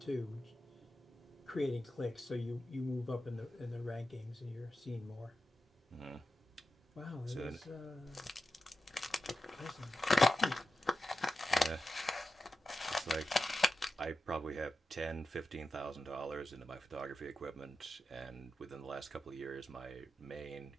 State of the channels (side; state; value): both; normal; correlation 0.92